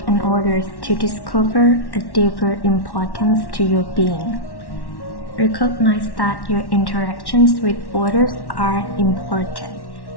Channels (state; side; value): late; right; 1.1 ms